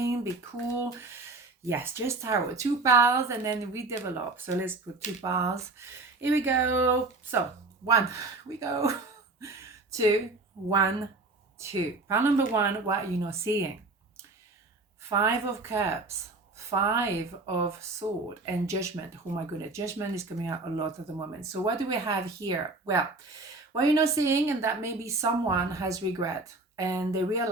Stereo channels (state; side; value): quieter; left; 3.3 dB